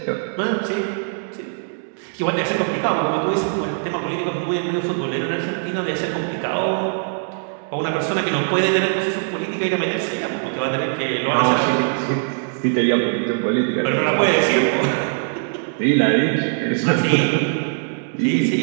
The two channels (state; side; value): silent; left; 65 dB below the other